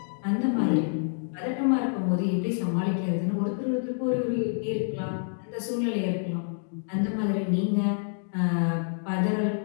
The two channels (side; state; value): right; silent; digital silence